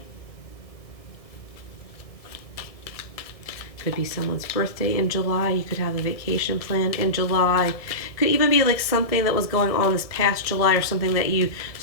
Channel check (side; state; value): right; late; 1.6 ms